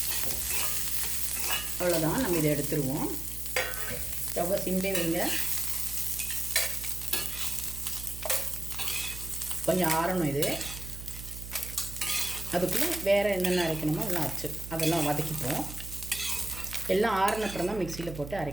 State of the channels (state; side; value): noise; right; hum, 11 dB below the sound